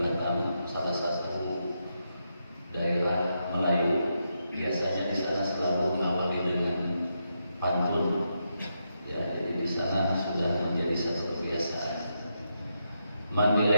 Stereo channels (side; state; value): both; inverted; correlation -0.83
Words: salah satu daerah Melayu. Biasanya di sana selalu mengawali dengan pantun. Ya, jadi di sana sudah menjadi satu kebiasaan. Mandi